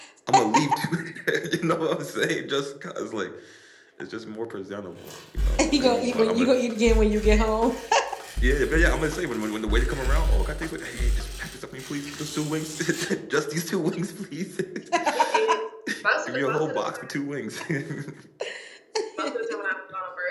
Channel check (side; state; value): both; identical; correlation 1.00